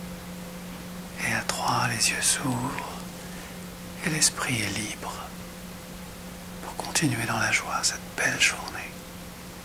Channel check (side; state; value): both; identical; correlation 1.00